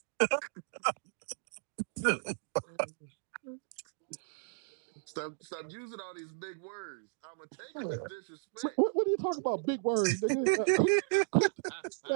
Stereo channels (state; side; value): silent; left; digital silence